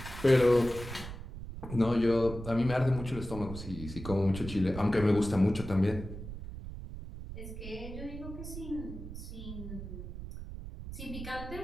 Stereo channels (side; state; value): right; noise; rumble, 10 dB below the sound